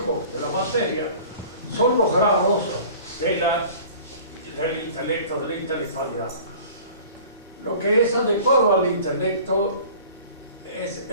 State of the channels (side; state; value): both; inverted; correlation -0.45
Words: de la materia, son los grados del intelecto, de la intelectualidad. Lo que es adecuado al intelecto es